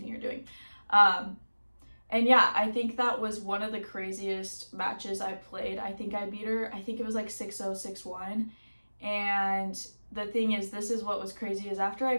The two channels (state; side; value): inverted; both; correlation -1.00